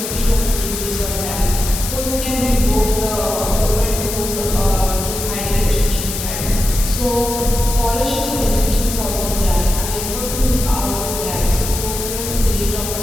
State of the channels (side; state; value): left; noise; hiss, 5 dB below the sound